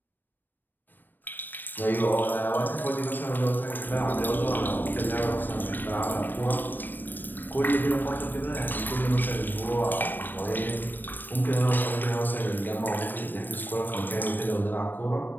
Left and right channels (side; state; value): right; late; 0.092 ms